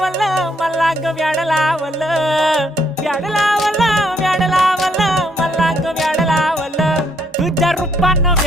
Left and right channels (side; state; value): both; normal; correlation 0.71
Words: मला ग व्याड लावलं व्याड लावलं व्याड लावलं मला ग व्याड लावलं तुझ्या रूपानं